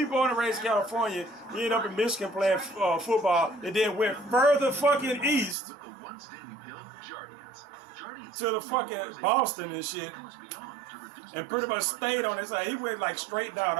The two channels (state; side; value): drops out; left; at 5.6 s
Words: and raised in California. He ended up in Michigan playing football, and then went further fucking east to the fucking Boston and shit, and pretty much stayed on his side. He went like straight down,